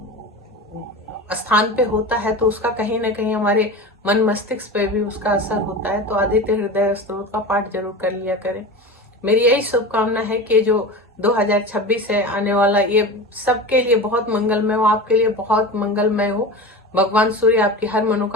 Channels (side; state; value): both; normal; correlation 0.29